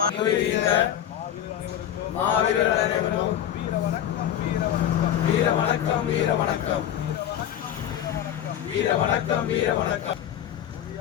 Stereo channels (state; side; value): quieter; right; 10.6 dB